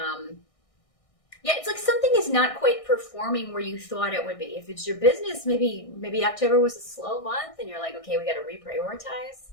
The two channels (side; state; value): right; late; 1.6 ms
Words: It's like something is not quite performing where you thought it would be. If it's your business, maybe October was a slow month and you're like, okay, we got to reprioritize.